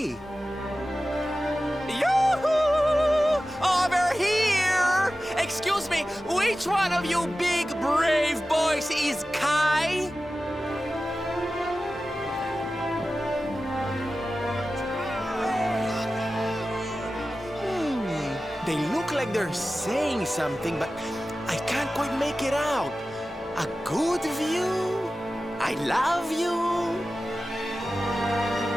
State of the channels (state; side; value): normal; both; correlation 0.95